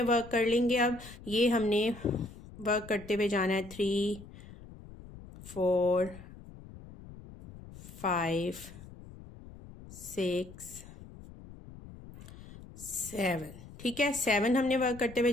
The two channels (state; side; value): noise; left; rumble, 17 dB below the sound